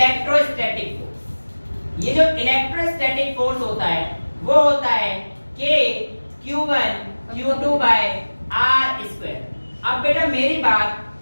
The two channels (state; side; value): inverted; both; correlation -1.00